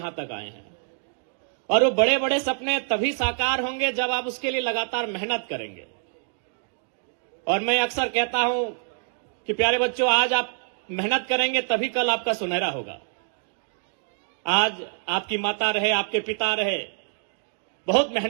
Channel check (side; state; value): left; silent; digital silence